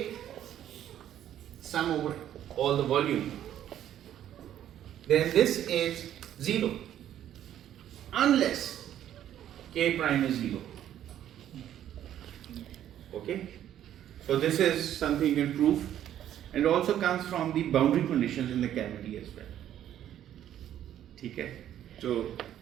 sum over all the volume, then this is 0 unless k prime is 0. Okay, so this is something you can prove, and also comes from the boundary conditions in the cavity as well. Okay, so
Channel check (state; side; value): quieter; left; 11.2 dB